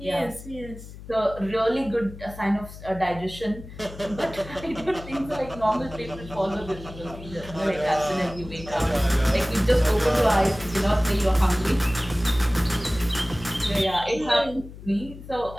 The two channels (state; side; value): noise; left; hum, 15 dB below the sound